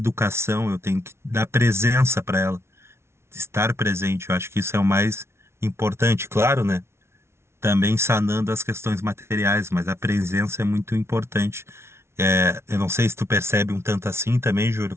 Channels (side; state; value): left; late; 0.13 ms